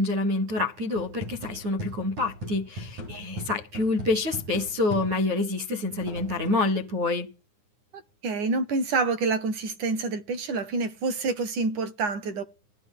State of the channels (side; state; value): left; late; 9.7 ms